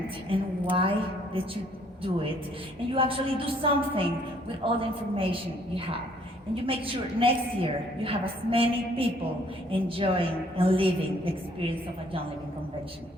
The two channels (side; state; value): both; normal; correlation 0.63